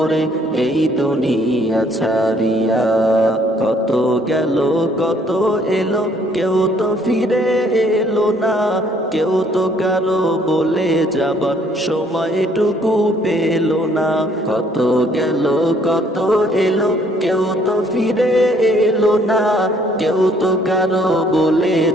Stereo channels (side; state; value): both; normal; correlation 0.63